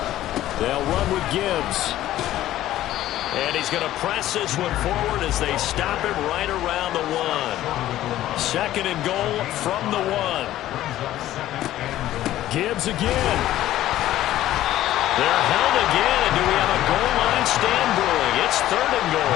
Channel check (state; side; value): quieter; right; 13.8 dB